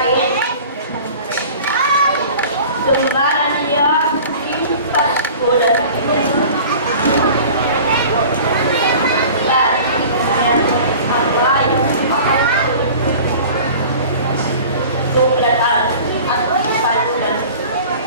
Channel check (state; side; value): inverted; both; correlation -0.42